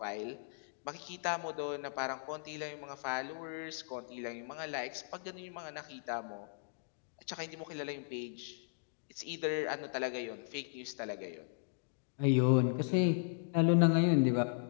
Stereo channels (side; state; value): right; silent; digital silence